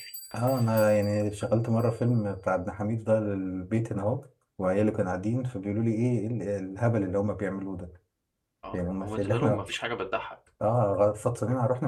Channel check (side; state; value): both; identical; correlation 1.00